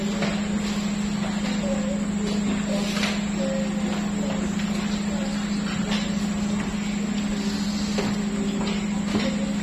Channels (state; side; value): identical; both; correlation 1.00